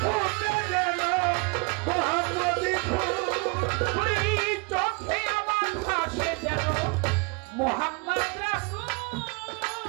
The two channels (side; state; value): left; quieter; 30.0 dB